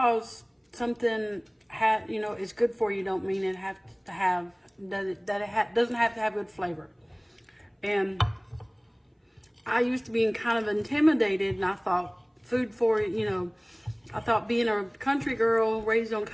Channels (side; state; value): both; identical; correlation 1.00